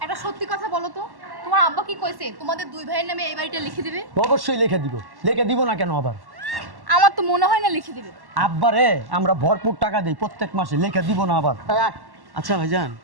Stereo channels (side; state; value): left; late; 1.1 ms